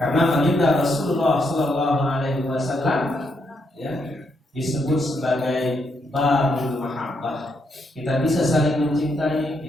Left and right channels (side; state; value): both; normal; correlation 0.78